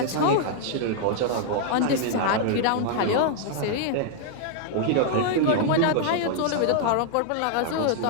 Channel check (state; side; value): different; both; correlation -0.01